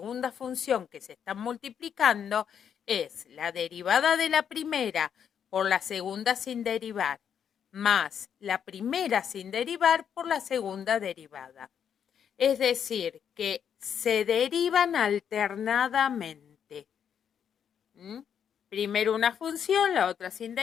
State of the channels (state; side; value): quieter; right; 8.2 dB